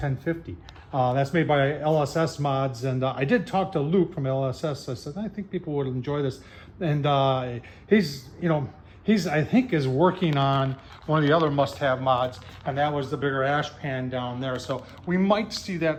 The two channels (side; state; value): both; identical; correlation 1.00